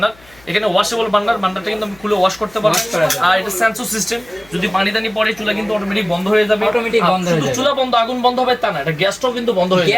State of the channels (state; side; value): noise; left; hum, 27 dB below the sound